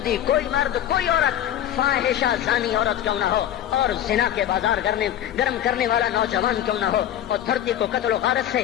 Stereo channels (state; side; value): quieter; right; 11.1 dB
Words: کوئی مرد، کوئی عورت فاحشہ زانی عورت کیوں نہ ہو، اور زنا کے بازار گرم کرنے والا نوجوان کیوں نہ ہو، اور دھرتی کو قتل و غارت